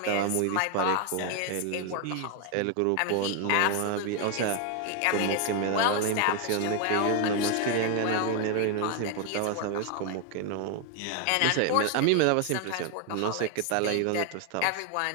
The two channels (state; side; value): different; both; correlation 0.01